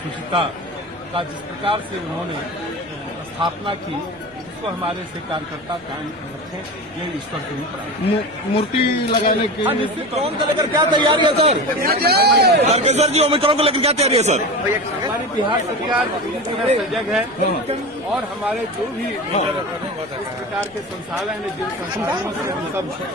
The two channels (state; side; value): noise; left; rumble, 29 dB below the sound